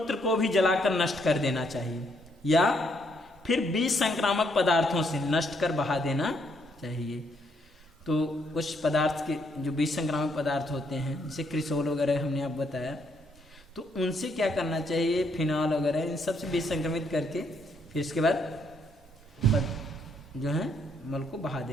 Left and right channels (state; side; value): normal; both; correlation 0.72